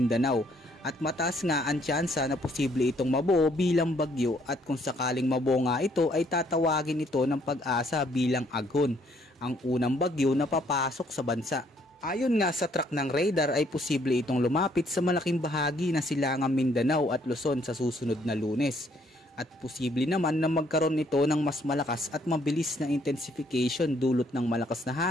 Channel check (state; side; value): normal; both; correlation 0.67